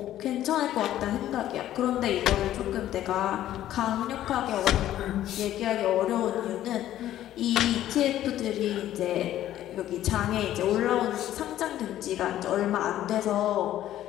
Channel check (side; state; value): right; quieter; 12.8 dB